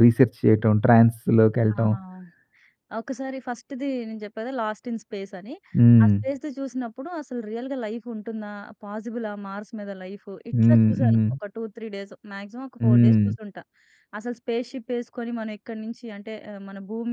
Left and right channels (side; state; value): both; identical; correlation 1.00